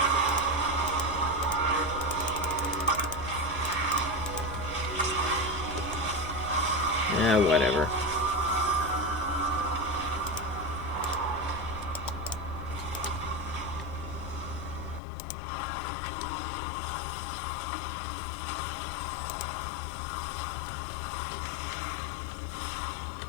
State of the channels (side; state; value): right; drops out; at 15.0 s